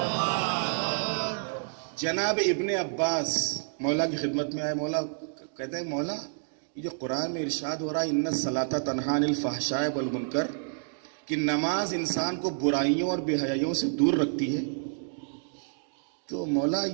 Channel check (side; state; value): left; silent; digital silence